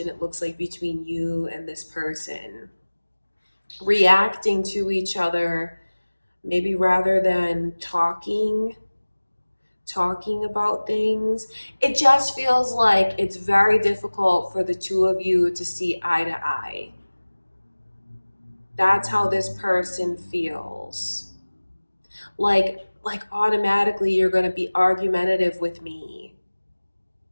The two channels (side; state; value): both; inverted; correlation -1.00